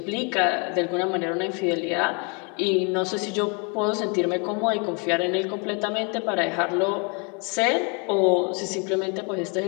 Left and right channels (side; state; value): right; quieter; 33.7 dB